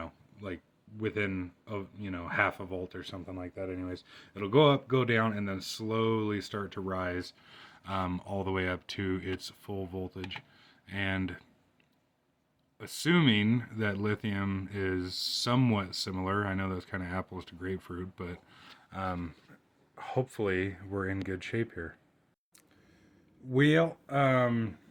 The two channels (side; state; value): both; identical; correlation 1.00